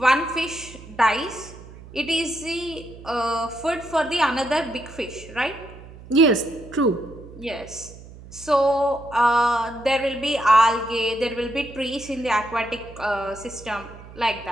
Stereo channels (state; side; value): noise; right; hum, 18 dB below the sound